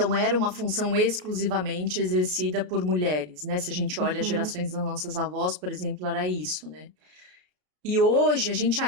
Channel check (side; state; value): left; late; 33 ms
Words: era uma função exclusivamente exercida por mulheres, né? Se a gente olha as Uhum. gerações das nossas avós, por exemplo, era isso, né? E hoje a gente